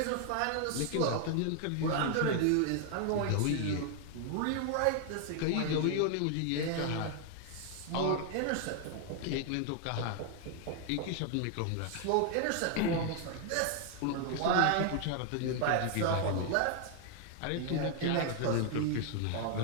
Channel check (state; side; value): different; both; correlation 0.00